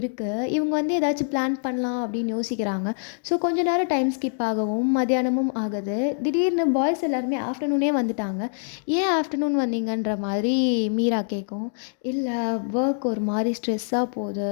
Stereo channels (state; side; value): silent; right; digital silence